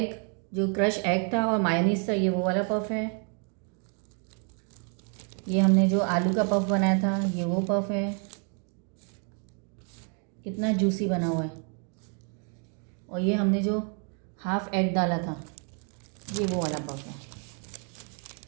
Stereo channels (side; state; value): left; quieter; 39.8 dB